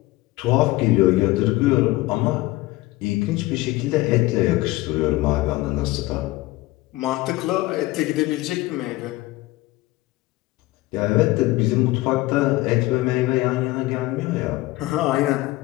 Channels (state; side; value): quieter; right; 19.2 dB